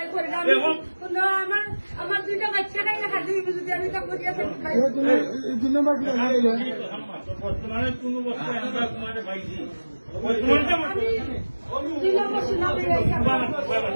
করি না আমি। না আমার দুইটা বাচ্চা নাই না হাজি যদি আমি তা করি আমি খাই। তুমি এই দুই নম্বর কি হয়ে গেল? বর্তমানে কোন বস্তু আমরা তোমাদের পাইছি আমি দিলাম মশলা বেরাইছি আমরা।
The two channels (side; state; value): both; inverted; correlation -1.00